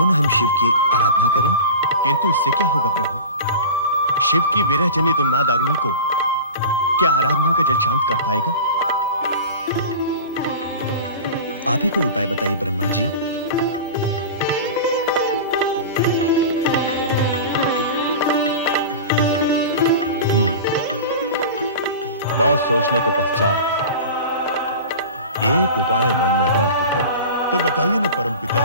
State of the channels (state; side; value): inverted; both; correlation -0.33